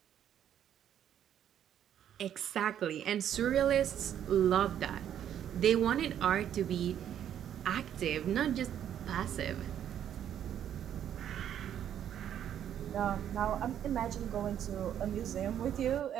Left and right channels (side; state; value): left; quieter; 10.0 dB